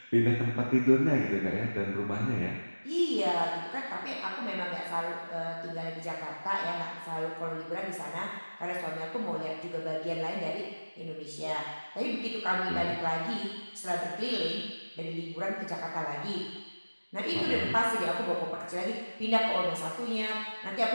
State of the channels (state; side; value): inverted; both; correlation -1.00